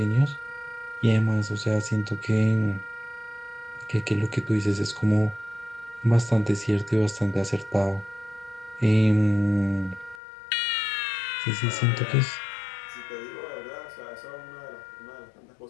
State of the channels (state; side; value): drops out; right; at 10.2 s